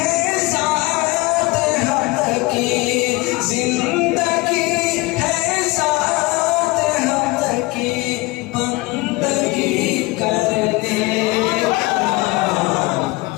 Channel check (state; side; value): quieter; right; 22.6 dB